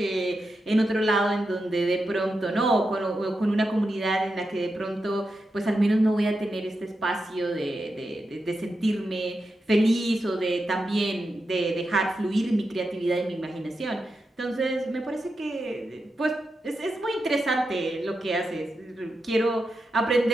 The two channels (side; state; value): both; normal; correlation 0.88